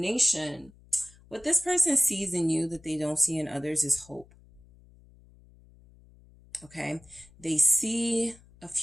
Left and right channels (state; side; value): noise; left; hum, 26 dB below the sound